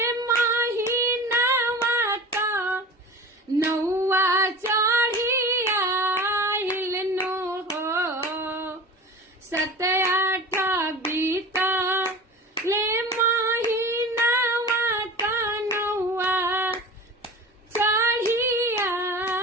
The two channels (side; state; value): both; normal; correlation 0.35